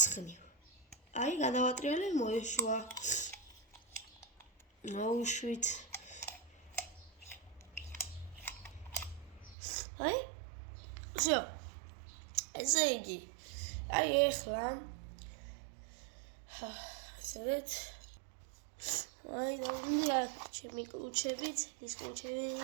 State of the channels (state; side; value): drops out; left; at 9.6 s